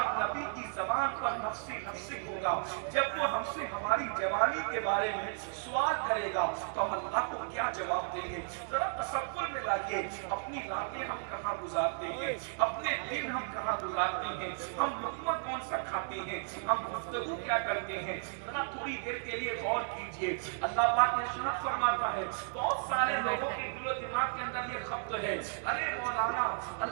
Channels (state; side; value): silent; left; digital silence